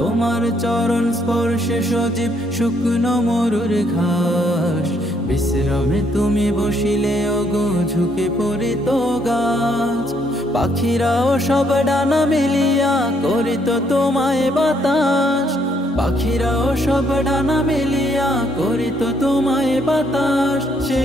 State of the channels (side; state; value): both; normal; correlation 0.70